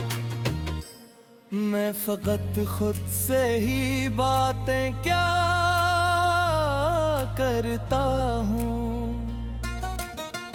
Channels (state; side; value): identical; both; correlation 1.00